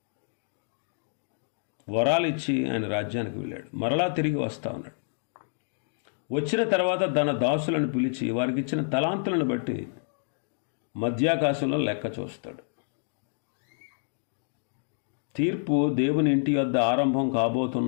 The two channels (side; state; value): right; silent; digital silence